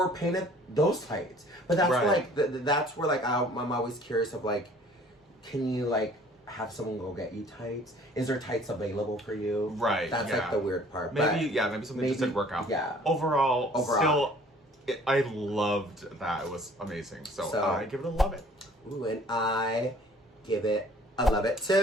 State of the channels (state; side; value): normal; both; correlation 0.53